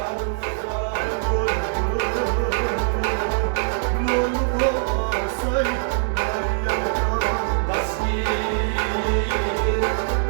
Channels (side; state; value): left; silent; digital silence